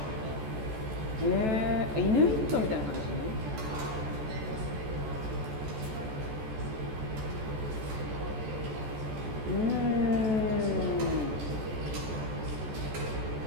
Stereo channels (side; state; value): left; late; 14 ms